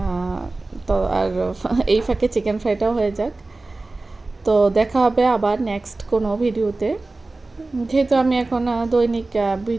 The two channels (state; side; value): quieter; left; 3.2 dB